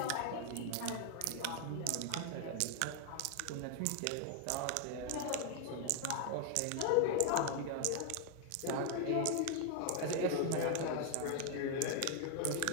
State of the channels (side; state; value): both; different; correlation 0.00